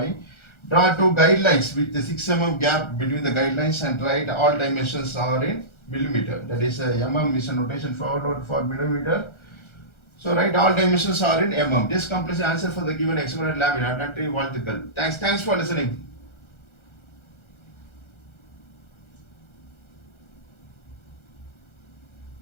Draw two guidelines with the 6 mm gap between the guidelines and write all dimensions are in millimeter. That is mm is a notation for millimeter. So write all dimensions are in mm. This completes the answer for the given hexagonal laminate, not vertical. Thanks for listening.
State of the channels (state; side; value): late; right; 1.3 ms